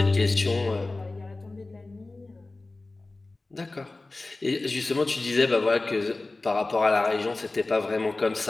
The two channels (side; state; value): right; quieter; 3.2 dB